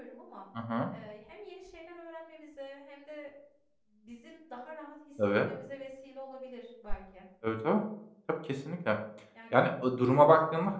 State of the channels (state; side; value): identical; both; correlation 1.00